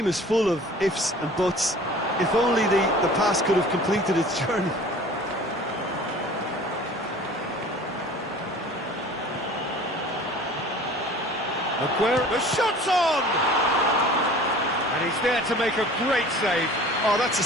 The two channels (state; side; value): normal; both; correlation 0.45